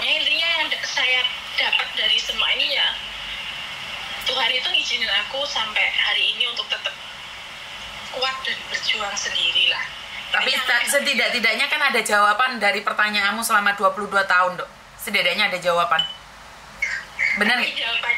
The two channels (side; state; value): both; identical; correlation 1.00